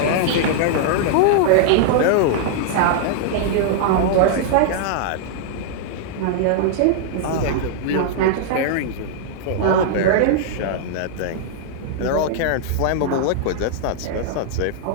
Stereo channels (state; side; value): different; both; correlation -0.01